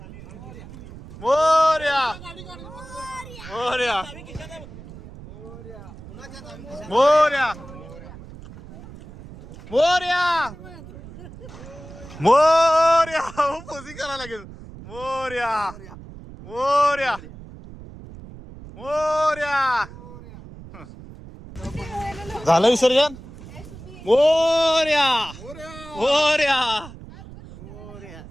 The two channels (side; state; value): right; noise; rumble, 16 dB below the sound